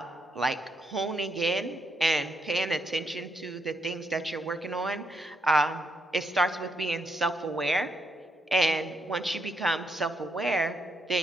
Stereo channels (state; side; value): normal; both; correlation 0.78